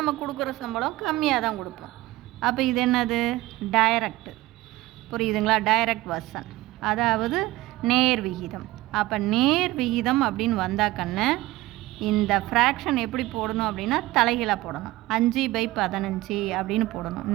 கொடுக்குற சம்பளம் கம்மியாக தான் கொடுப்போம். அப்போ இது என்னது? டைரக்ட். புரியுதுங்களா? டைரக்ட் வெர்சன், அதாவது நேர் விகிதம். அப்போ நேர் விகிதம் அப்படின்னு வந்தாக்கன்னு இந்த ஃப்ராக்ஷன் எப்படி போடணும் அப்படின்னா தலைகீழாக போடணும். 5/15 அப்படின்னு போடணும்.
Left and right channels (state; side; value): quieter; left; 18.3 dB